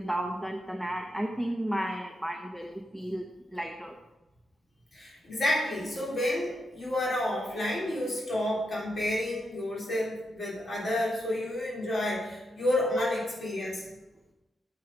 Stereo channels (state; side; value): normal; both; correlation 0.83